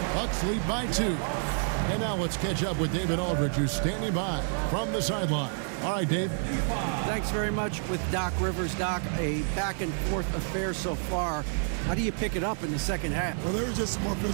Bucks lead by 2. And now let's catch up with David Aldridge, who's standing by from the sideline. All right, Dave. Thanks very much with Doc Rivers. Doc, a back-and-forth affair so far. How do you pick it up in the second half? Well, they were just a more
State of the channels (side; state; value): left; silent; 55 dB below the other